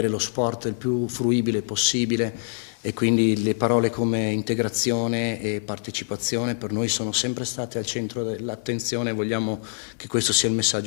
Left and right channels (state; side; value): silent; right; digital silence